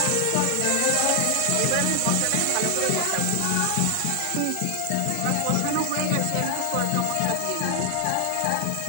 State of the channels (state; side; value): different; both; correlation 0.00